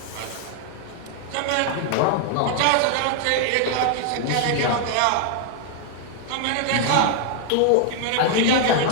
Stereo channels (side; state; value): both; different; correlation 0.00